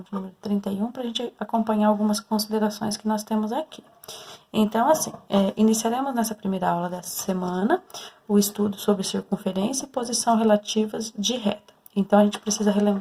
de número 31, para a gente acompanhar algumas considerações que nós temos aqui. Então, assim, iniciaremos nessa primeira aula dessa semana o estudo sobre circunferência e posição relativas de reta. Então, a gente precisa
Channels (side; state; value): both; identical; correlation 1.00